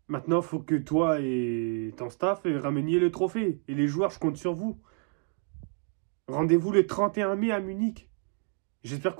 Maintenant, il faut que toi et ton staff rameniez le trophée. Et les joueurs, je compte sur vous. Rendez-vous le 31 mai à Munich. J'espère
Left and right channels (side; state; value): left; quieter; 35.4 dB